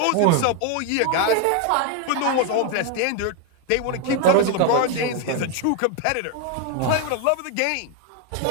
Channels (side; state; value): both; different; correlation 0.01